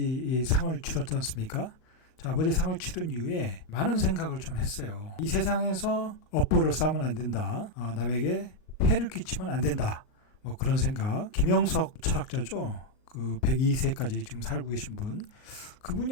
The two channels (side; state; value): right; late; 38 ms